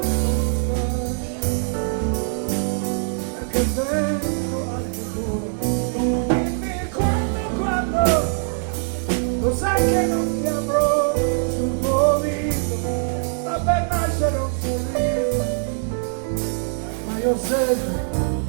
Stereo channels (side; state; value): left; silent; digital silence